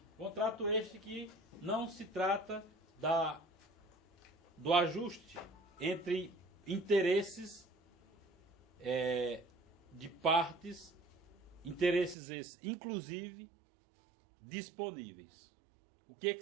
contrato este que não se trata do ajuste entre interesses de partes, interesses esses, inclusive, disponíveis. O que que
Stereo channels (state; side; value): drops out; left; at 12.2 s